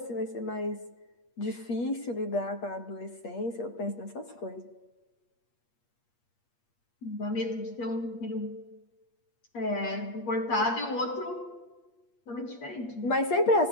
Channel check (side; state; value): right; late; 8.5 ms